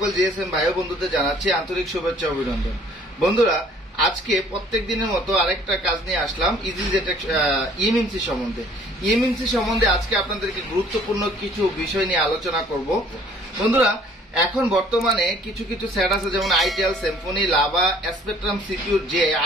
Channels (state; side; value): normal; both; correlation 0.56